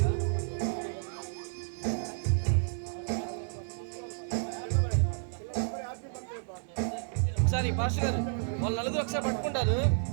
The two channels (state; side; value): silent; left; digital silence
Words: ఒకసారి పాస్టర్ గారు వాళ్ళు నలుగురు ఒకసారి పట్టుకుంటారు.